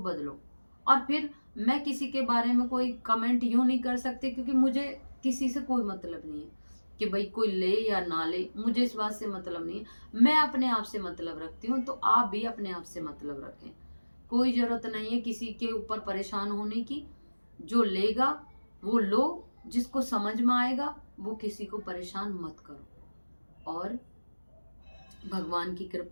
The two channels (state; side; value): inverted; both; correlation -1.00